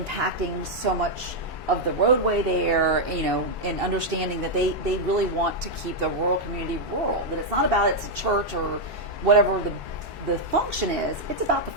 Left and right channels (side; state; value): both; normal; correlation -0.02